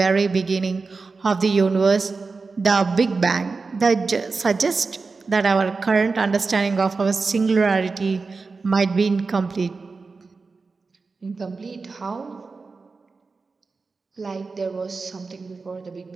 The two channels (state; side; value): quieter; left; 4.3 dB